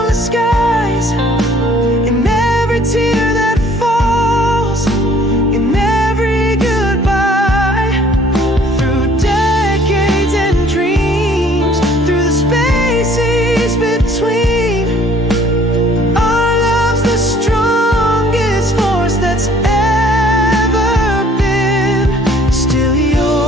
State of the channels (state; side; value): normal; both; correlation 0.57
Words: skies, in every tear that falls, in every goodbye, through decades and dreams, through the spaces between. Our love's the strongest force that's ever been. Still